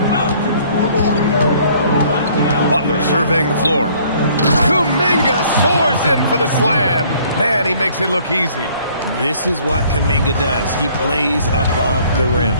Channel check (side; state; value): both; inverted; correlation -0.58